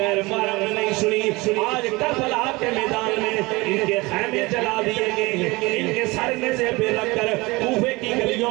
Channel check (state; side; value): quieter; left; 23.1 dB